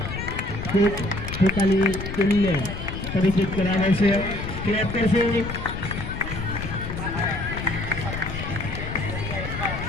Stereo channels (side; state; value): left; noise; rumble, 6 dB below the sound